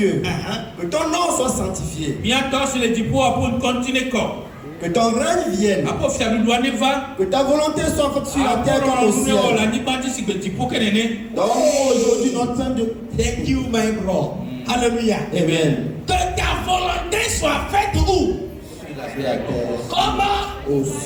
que ton nom soit sanctifié. Que ton règne vienne. Que ta volonté soit faite sur la terre comme au ciel. Donc aujourd'hui notre pain de... Thank you, my bro. Alléluia. Amen. Que ta volonté soit faite où? Comment? Au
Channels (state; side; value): identical; both; correlation 1.00